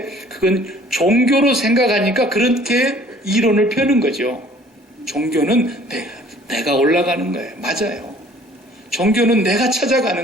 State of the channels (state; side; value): normal; both; correlation 0.54